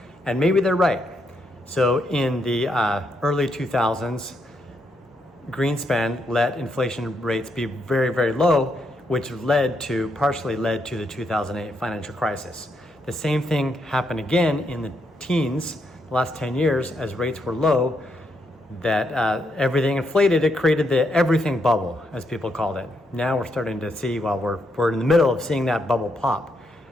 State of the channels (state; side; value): normal; both; correlation 0.78